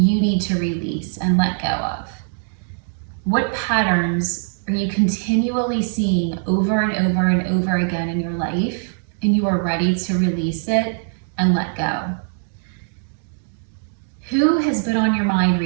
need to release and let go of? What patterns are you continually seeing over and over and over again in your life, and you are ready to release it and let go? Who has been on your mind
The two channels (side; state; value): left; silent; digital silence